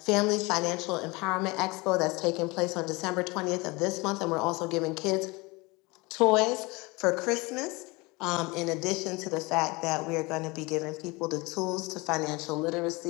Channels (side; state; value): right; quieter; 24.9 dB